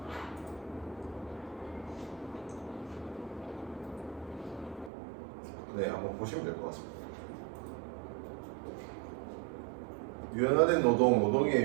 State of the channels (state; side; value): drops out; left; at 4.9 s